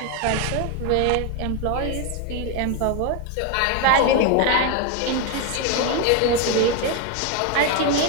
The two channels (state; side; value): different; both; correlation 0.02